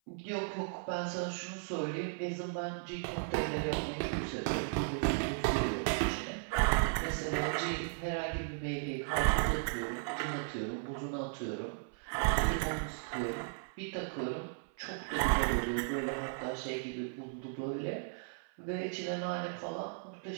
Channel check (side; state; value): left; silent; 54 dB below the other